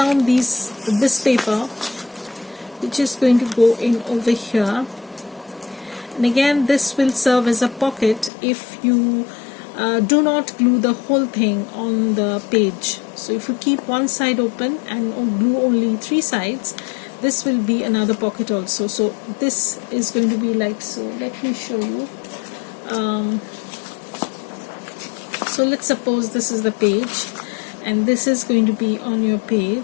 this paper, which is going to go in over here. And again, this will serve as a pocket if you do not glue the whole thing on the page. So if you keep one side open and glue only 3 sides, this will be another pocket also. So this is going to be like so. Let me show you. So let's suppose this is the page, and this is going to be on your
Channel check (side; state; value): right; drops out; at 8.3 s